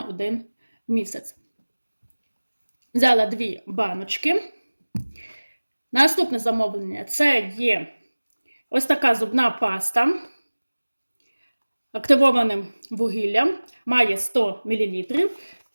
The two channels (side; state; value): both; inverted; correlation -1.00